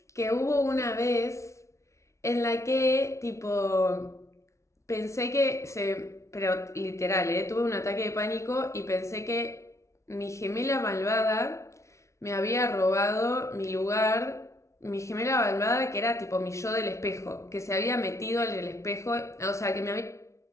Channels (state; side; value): late; right; 0.14 ms